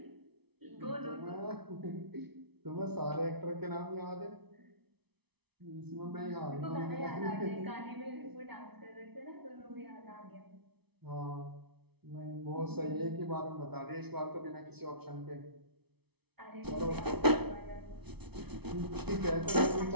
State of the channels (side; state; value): left; late; 0.99 ms